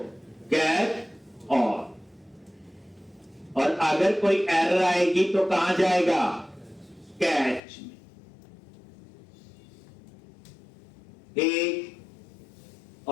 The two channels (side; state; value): right; drops out; at 7.6 s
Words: गेट और अगर कोई एरर आएगी तो कहां जाएगा कैच में। ठीक